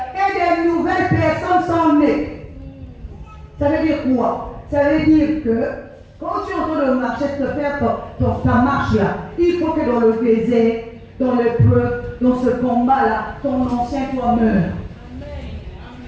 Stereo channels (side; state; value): both; identical; correlation 1.00